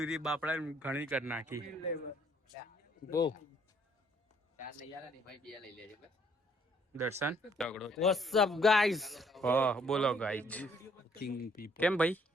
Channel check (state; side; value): normal; both; correlation 0.65